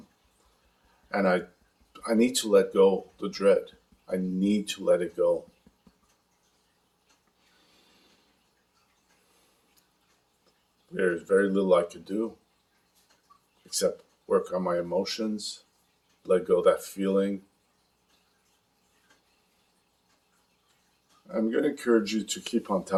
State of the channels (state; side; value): identical; both; correlation 1.00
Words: And I need to let go the dread. I need to let it go. There's very little I could do except work on my emotions, let go of that feeling. I'm going to encourage you to keep on